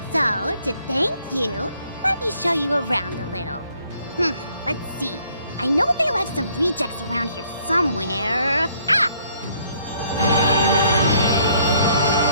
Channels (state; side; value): inverted; both; correlation -0.65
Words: So, to thank you, let me show you around a little. Let's see. I know they left some rejects around here somewhere. Ah!